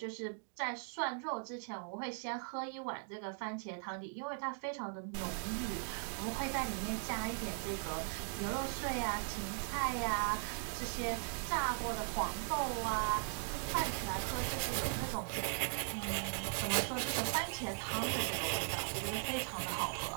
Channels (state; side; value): silent; left; 52 dB below the other